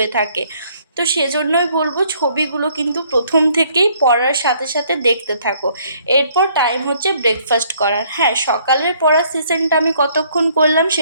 থাকে। তো সেজন্যই বলবো ছবিগুলো কিন্তু প্রথম থেকেই পড়ার সাথে সাথে দেখতে থাকো। এরপর টাইম হচ্ছে ব্রেকফাস্ট করার। হ্যাঁ, সকালের পড়ার সেশনটা আমি কতক্ষণ করলাম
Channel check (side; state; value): both; inverted; correlation -0.64